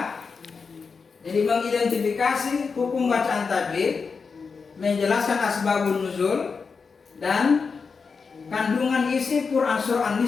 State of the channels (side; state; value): right; quieter; 5.1 dB